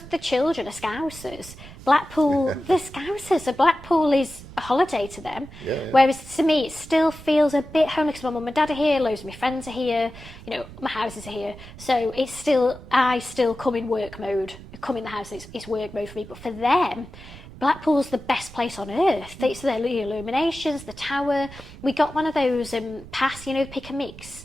the children are Scousers, Blackpool, the Scousers, so Blackpool is a holiday to them. Yeah. Whereas to me, it still feels a bit homely because my mum and dad are here, loads of my friends are here, my houses are here. So I still come in work mode. I come in the house, it's work mode for me. But for them, Blackpool's the best place on earth. It's the illuminations, the tower. We got one of those pass, pick and mix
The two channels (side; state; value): right; noise; rumble, 17 dB below the sound